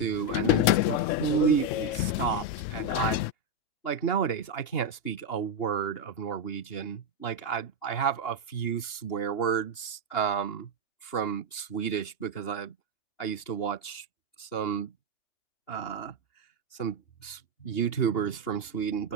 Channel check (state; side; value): late; right; 2.8 ms